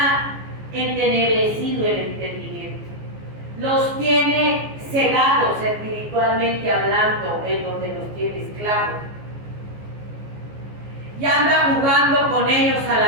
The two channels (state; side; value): late; left; 14 ms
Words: entenebrecido el entendimiento. Los tiene cegados espiritualmente hablando, en donde los tiene esclavos. Y anda jugando con ellos a